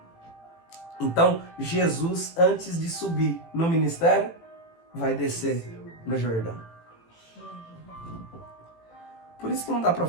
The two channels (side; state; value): right; late; 18 ms